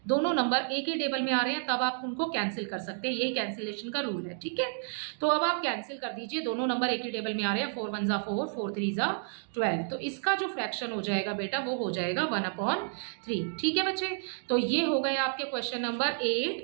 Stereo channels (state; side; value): silent; left; digital silence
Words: दोनों नंबर एक ही टेबल में आ रहे हैं, तब आप उनको कैंसिल कर सकते हैं, यही कैंसिलेशन का रूल है, ठीक है। तो अब आप कैंसिल कर दीजिए, दोनों नंबर एक ही टेबल में आ रहे हैं, 4 1 4 4 3 12, तो इसका जो फ्रैक्शन हो जाएगा बेटा वो हो जाएगा 1/3, ठीक है बच्चे। तो ये हो गए आपके क्वेश्चन नंबर 8